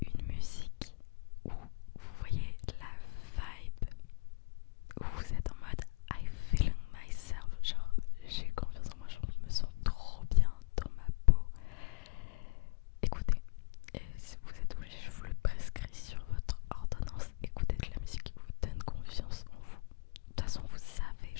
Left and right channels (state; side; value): quieter; right; 31.9 dB